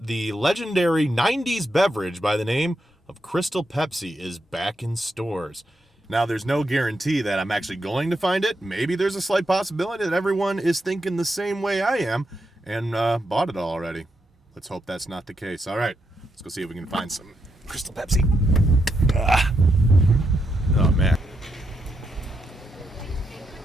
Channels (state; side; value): normal; both; correlation 0.82